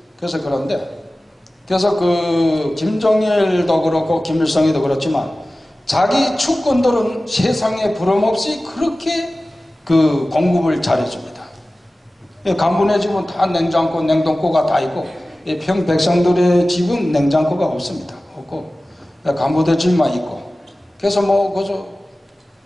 그래서 그래서 그 김정일도 그렇고 김일성이도 그렇지만 자기 축권들은 세상에 부름없이 그렇게 그 공급을 잘해줍니다. 간부네 집은 다 냉장고, 냉동고가 다 있고 평 백성들의 집은 냉장고가 없습니다. 없고 간부들 집만 있고 그래서 그저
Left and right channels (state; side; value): normal; both; correlation 0.96